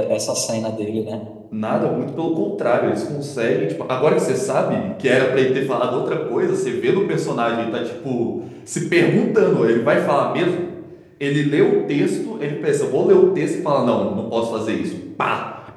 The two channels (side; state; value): both; identical; correlation 1.00